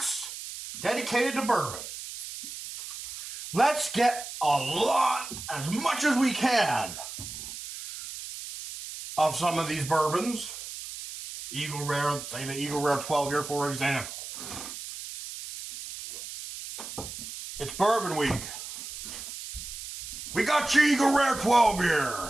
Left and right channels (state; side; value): noise; right; hiss, 10 dB below the sound